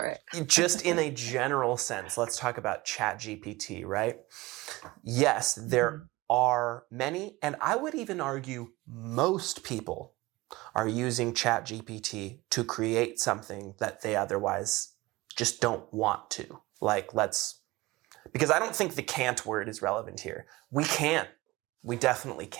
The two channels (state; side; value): quieter; left; 20.6 dB